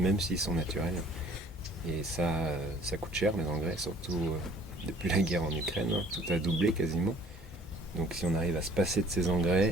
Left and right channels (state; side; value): normal; both; correlation 0.55